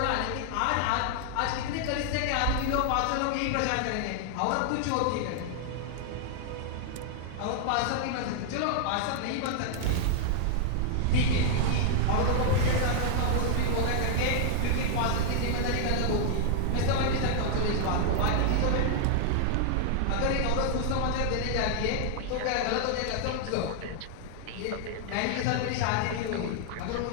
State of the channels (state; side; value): different; both; correlation -0.01